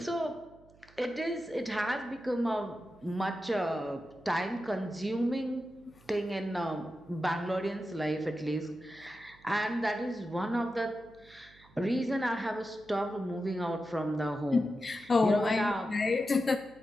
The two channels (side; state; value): right; noise; hum, 26 dB below the sound